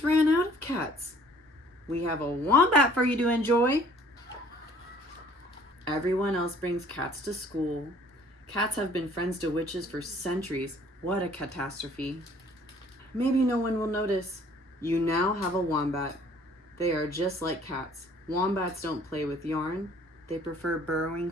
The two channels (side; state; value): both; normal; correlation 0.56